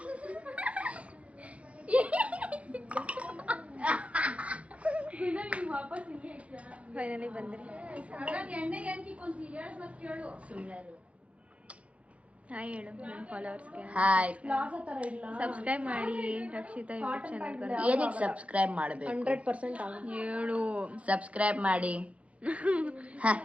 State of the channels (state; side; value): late; left; 0.063 ms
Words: ಫೈನಲಿ ಬಂದ್ರಿ. ಹಾಯ್ ಹೇಳು ನನ್ನ ಫಾಲೋವರ್ಸ್ಗೆ. ಹಾಯ್, ಸಬ್ಸ್ಕ್ರೈಬ್ ಮಾಡಿ ರಕ್ಷಿತಾ ಯೂಟ್ಯೂಬ್ ಚಾನಲ್. ಏನಕ್ಕೆ ಸಬ್ಸ್ಕ್ರೈಬ್ ಮಾಡಬೇಕು? 100% ಹೇಳು. ಸಬ್ಸ್ಕ್ರೈಬ್ ಮಾಡಿ,